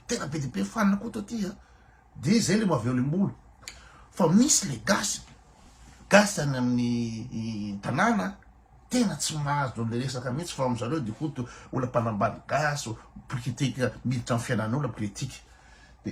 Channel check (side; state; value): both; identical; correlation 1.00